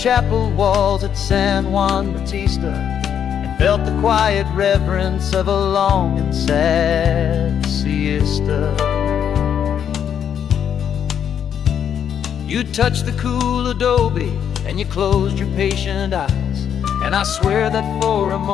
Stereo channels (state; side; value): quieter; right; 8.7 dB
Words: walls at San Juan Bautista and felt the quiet reverence of a long and sad siesta. You touched the cool adobe and you closed your patient eyes, and I swear that for a